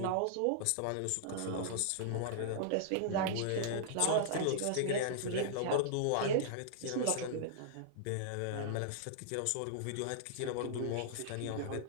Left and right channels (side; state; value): both; different; correlation -0.01